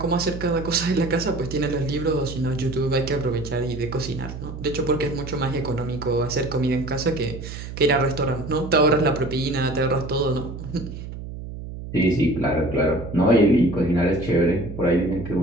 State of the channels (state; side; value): noise; right; hum, 10 dB below the sound